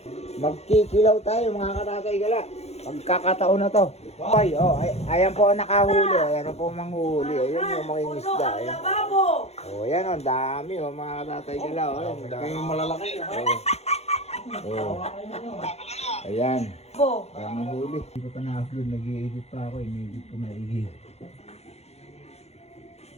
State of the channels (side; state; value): right; late; 0.31 ms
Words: Magkikilaw tayo mga katatay gala. Pagkakataon na to. Ay, ayan po ang nakahuli. Ayan po ang manghuhuli. Ayan yung mga isda. Ayan. Ayan o, dami mga katatay gala. Yung malalaki. Ayan. Ayan ang huli. Hindi ko pa na-upload. Nag-i-edit pa ako. Ini-edit ko maigi.